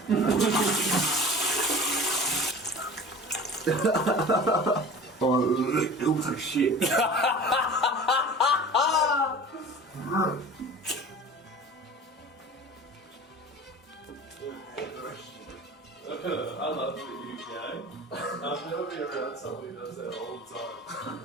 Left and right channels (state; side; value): normal; both; correlation 0.39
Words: Oh, it looks like shit. I love that you gay. I've never been around somebody who does that all the time.